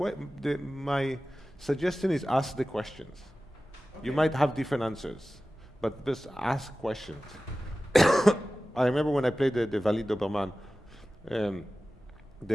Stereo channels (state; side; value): normal; both; correlation 0.96